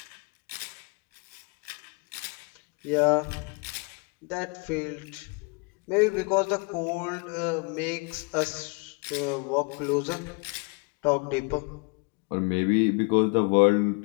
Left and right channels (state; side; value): quieter; right; 32.8 dB